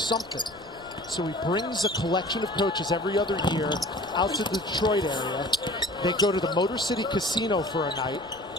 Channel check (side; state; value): left; noise; rumble, 24 dB below the sound